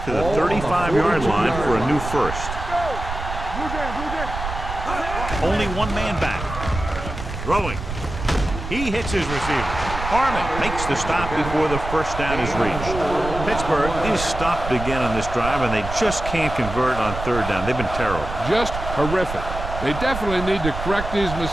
to the 35-yard line for a new first. Blue jam. Only one man back. Throwing. He hits his receiver. Harmon makes the stop before the first down is reached. Pittsburgh is stopped again on this drive, and they just can't convert on 3rd down. They've been terrible. Just horrific. They definitely need to correct these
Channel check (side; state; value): right; noise; rumble, 7 dB below the sound